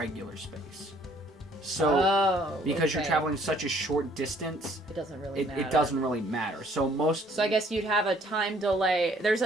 space. So because you're okay. traveling such a short distance, It doesn't really matter. it doesn't really matter. So So I guess you'd have a time delay. There's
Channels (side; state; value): both; normal; correlation 0.61